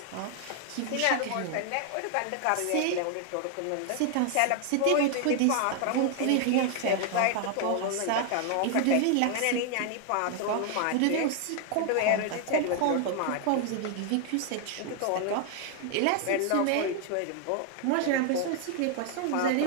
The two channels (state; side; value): different; both; correlation 0.00